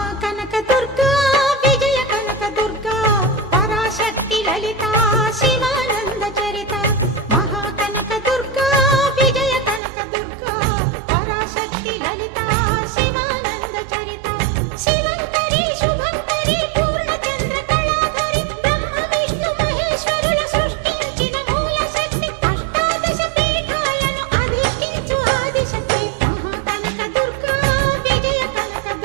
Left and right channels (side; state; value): left; drops out; at 9.8 s